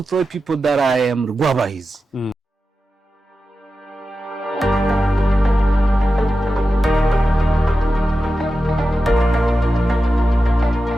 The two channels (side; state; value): both; normal; correlation 0.92